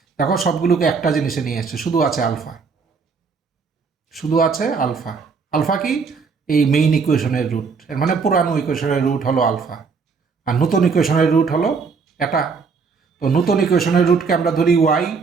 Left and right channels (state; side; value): quieter; left; 5.2 dB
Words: দেখো সবগুলোকে একটা জিনিসে নিয়ে এসছে, শুধু আছে আলফা, শুধু আছে আলফা। আলফা কি, এই মেইন ইকুয়েশনের রুট, এর মানে পুরানো ইকুয়েশনের রুট হলো আলফা, আর নতুন ইকুয়েশনের রুট হলো এটা। তো নতুন ইকুয়েশনের রুটকে আমরা ধরি ওয়াই,